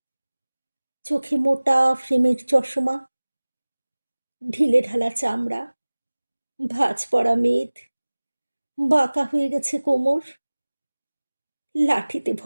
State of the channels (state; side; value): inverted; both; correlation -1.00